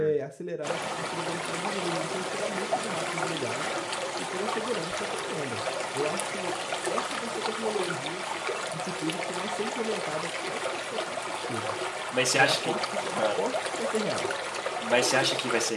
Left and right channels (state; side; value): identical; both; correlation 1.00